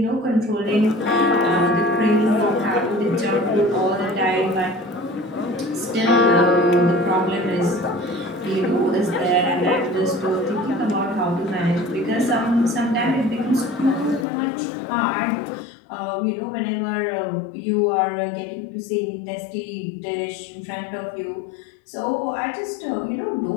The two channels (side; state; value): right; drops out; at 14.2 s